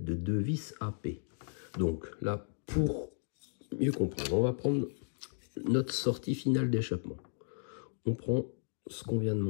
de deux vis AP. Donc là, pour mieux comprendre, on va prendre notre sortie finale d'échappement. On prend ce qu'on vient de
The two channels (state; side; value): silent; right; digital silence